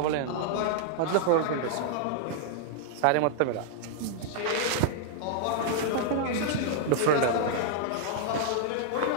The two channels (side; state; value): both; different; correlation -0.01